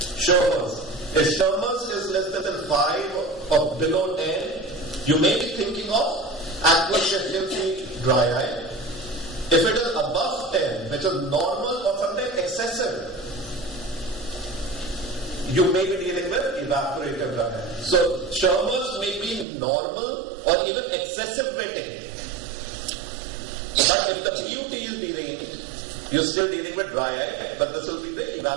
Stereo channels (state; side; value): drops out; left; at 19.5 s